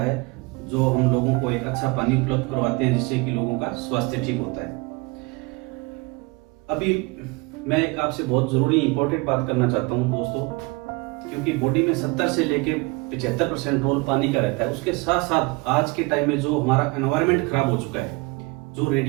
जो हम लोगों को एक अच्छा पानी उपलब्ध करवाते हैं, जिससे कि लोगों का स्वास्थ्य ठीक होता है। अभी मैं एक आपसे बहुत ज़रूरी इंपॉर्टेंट बात करना चाहता हूँ दोस्तों, क्योंकि बॉडी में 70 से लेके 75% रोल पानी का रहता है। उसके साथ साथ आज के टाइम में जो हमारा एनवायरनमेंट खराब हो चुका है, जो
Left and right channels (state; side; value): quieter; left; 26.2 dB